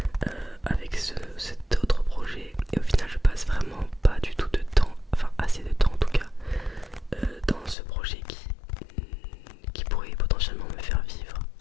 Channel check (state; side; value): drops out; right; at 7.8 s